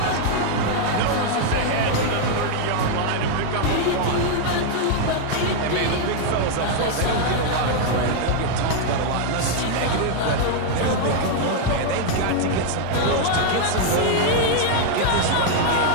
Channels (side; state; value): both; different; correlation 0.00